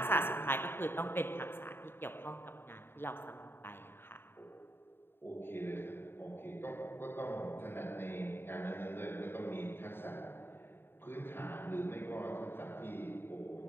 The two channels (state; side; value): late; right; 0.11 ms